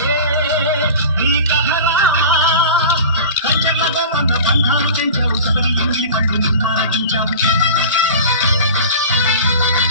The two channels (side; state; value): both; inverted; correlation -0.36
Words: నీ కథరా కంచెలతో కన్న బంధాలు పెంచావు సగరి ఇంటి కళ్ళు నిన్నారగించావు